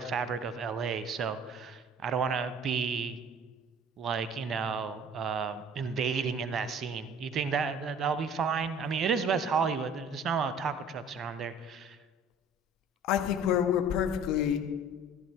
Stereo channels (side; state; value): both; normal; correlation 0.49